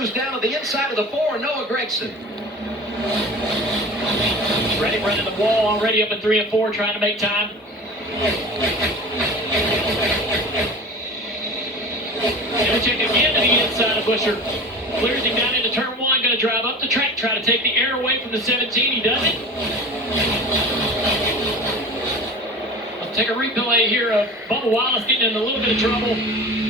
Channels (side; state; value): both; normal; correlation 0.36